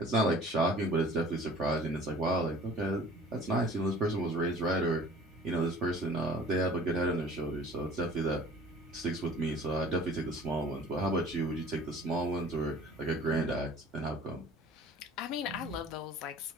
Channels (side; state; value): both; normal; correlation 0.47